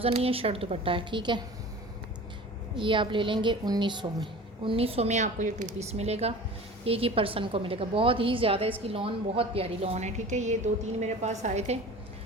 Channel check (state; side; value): normal; both; correlation 0.39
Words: नहीं है, शर्ट दुपट्टा है, ठीक है। ये आप ले लेंगे 1900 में। 1900 में आपको ये 2 पीस मिलेगा, एक ही पर्सन को मिलेगा। बहुत ही ज़्यादा इसकी लॉन, बहुत प्यारी लॉन है, ठीक है। ये 2-3 मेरे पास आए थे।